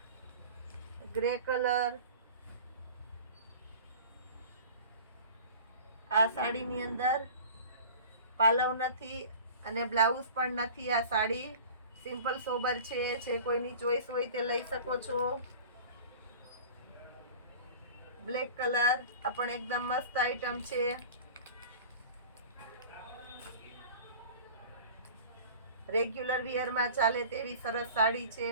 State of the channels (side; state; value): both; inverted; correlation -0.41